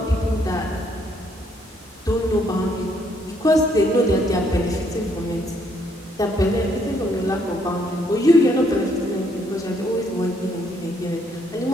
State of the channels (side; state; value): both; normal; correlation 0.69